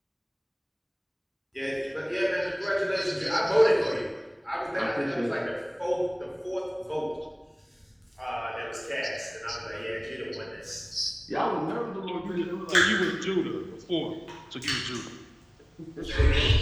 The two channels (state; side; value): identical; both; correlation 1.00